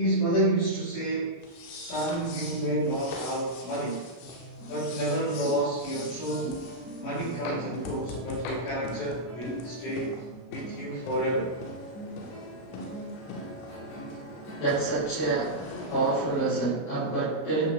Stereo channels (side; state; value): right; late; 33 ms